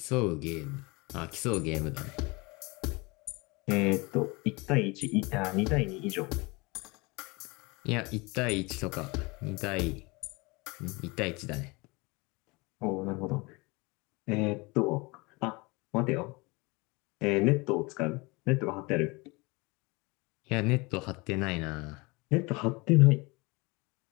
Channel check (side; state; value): right; quieter; 25.8 dB